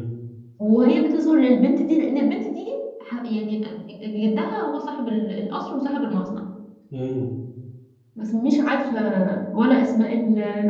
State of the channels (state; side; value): identical; both; correlation 1.00